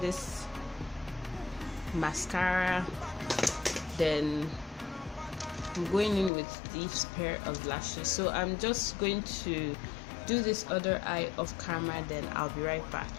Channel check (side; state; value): right; drops out; at 6.3 s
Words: this mascara, then I'm going in with this pair of lashes. So I'm just going to do this other eye off camera, then I'll be right back.